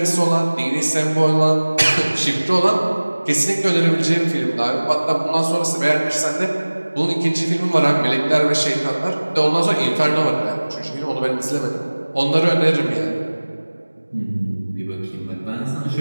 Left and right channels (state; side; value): inverted; both; correlation -1.00